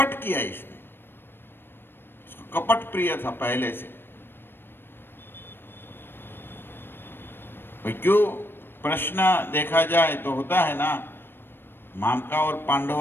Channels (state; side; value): late; right; 0.10 ms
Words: किया, इसको कपट प्रिय था पहले से। क्यों प्रश्न देखा जाए तो होता है ना, मामका और